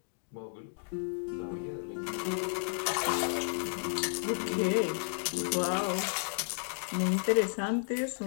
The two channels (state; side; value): silent; right; 56 dB below the other